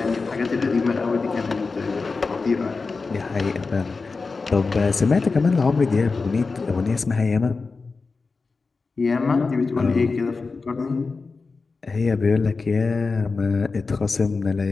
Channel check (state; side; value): quieter; right; 4.2 dB